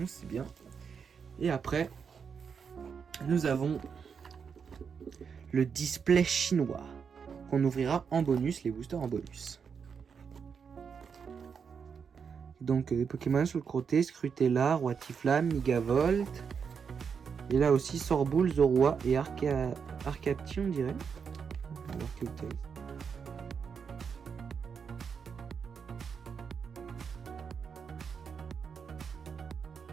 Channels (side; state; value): left; quieter; 6.4 dB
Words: c'est bien. Et après, nous avons le display chinois qu'on ouvrira en bonus, les boosters en bonus. Donc les Pokémon sur le côté, Scrutella, Roitiflamme, Megavolt. Et là aussi Sorboule, Zorua et Arcapti, on dirait. On va voir quel texte.